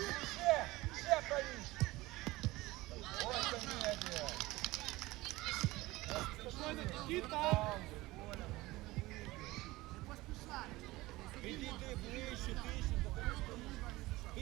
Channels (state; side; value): quieter; left; 19.5 dB